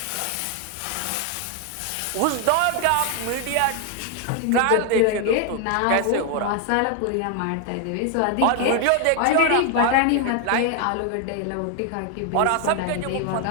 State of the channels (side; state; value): both; different; correlation 0.00